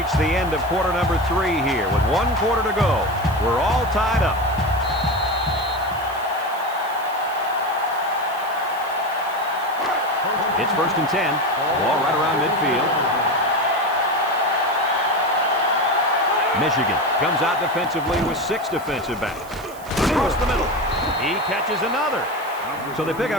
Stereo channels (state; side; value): noise; right; hiss, 20 dB below the sound